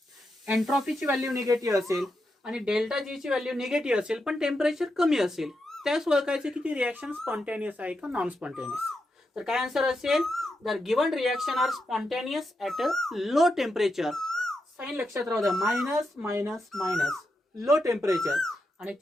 एंट्रॉपीची व्हॅल्यू निगेटिव्ह असेल आणि डेल्टा जी ची व्हॅल्यू निगेटिव्ह असेल पण टेम्परेचर कमी असेल, त्यास ओळखायचे की ती रिएक्शन स्पॉन्टॅनियस आहे का नॉन स्पॉन्टॅनियस. तर काय आन्सर असेल, जर given reaction are spontaneous at a low temperature, sign लक्षात राहू द्या, minus minus minus low temperature आणि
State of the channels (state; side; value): normal; both; correlation 0.86